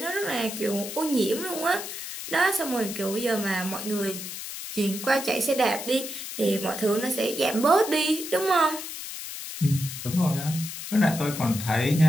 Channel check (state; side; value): noise; left; hiss, 8 dB below the sound